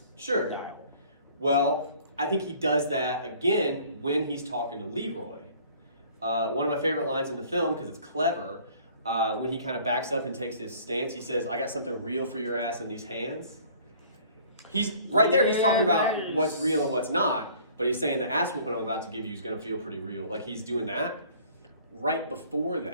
style. Well, I think he does that again when he's talking to Leroy. One of my favorite lines in the film, because it's clever, when he kind of backs up and takes his stance, he says, I got something real for your ass in these hands. He's right there, he's talking about what's real and what's not, but he's saying the ass whooping I'm about to give you is going to feel pretty real. Like he's doing that. Right before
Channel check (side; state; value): both; inverted; correlation -0.52